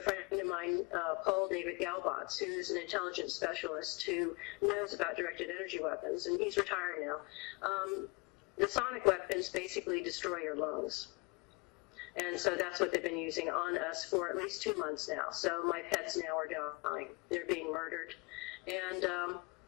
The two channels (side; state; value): right; quieter; 28.2 dB